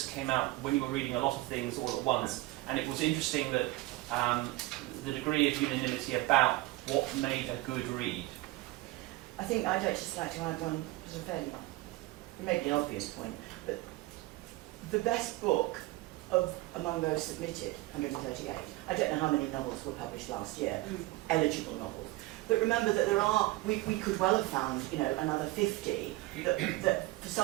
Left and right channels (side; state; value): left; quieter; 19.8 dB